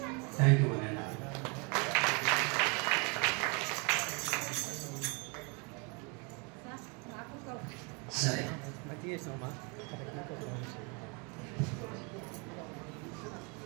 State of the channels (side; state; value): left; quieter; 31.2 dB